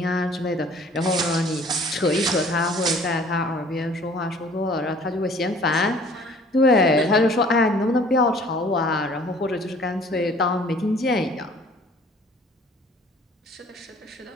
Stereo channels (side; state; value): both; normal; correlation 0.53